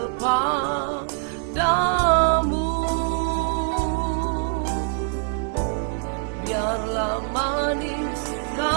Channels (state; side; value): silent; left; 63 dB below the other